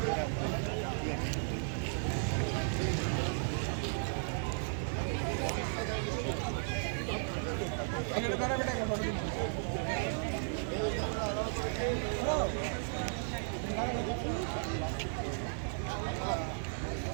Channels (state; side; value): silent; left; digital silence